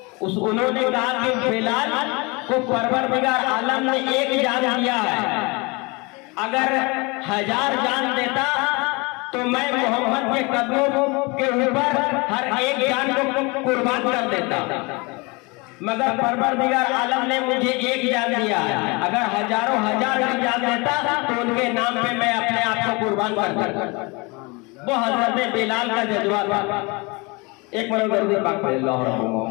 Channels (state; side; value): quieter; right; 27.4 dB